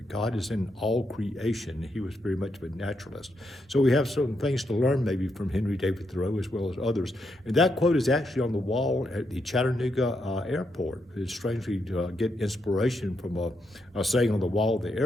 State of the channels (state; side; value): normal; both; correlation 0.80